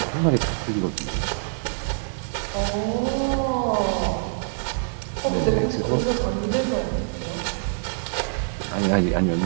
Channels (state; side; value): silent; left; digital silence